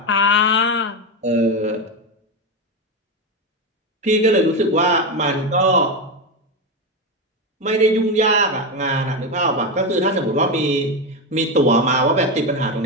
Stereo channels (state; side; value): normal; both; correlation 0.13